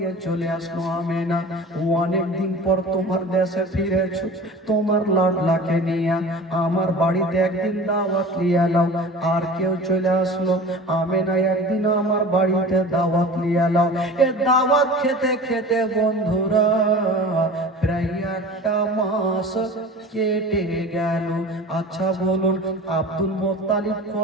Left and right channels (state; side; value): normal; both; correlation 0.38